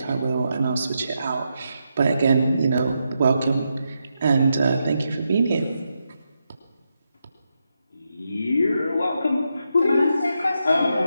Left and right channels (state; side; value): inverted; both; correlation -0.84